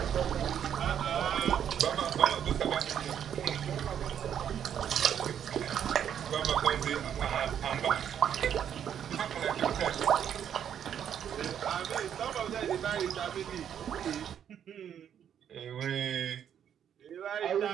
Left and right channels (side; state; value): left; quieter; 9.1 dB